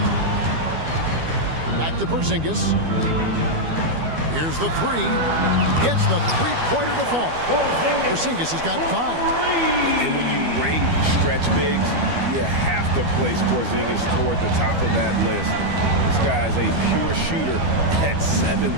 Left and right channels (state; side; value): late; left; 12 ms